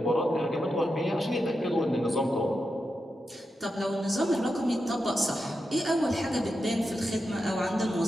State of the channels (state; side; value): normal; both; correlation 0.88